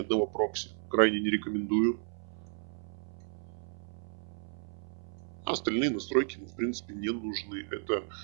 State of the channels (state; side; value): silent; left; 56 dB below the other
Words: одного прокси крайне не рекомендую. Остальные настройки, в принципе, не нужны. Это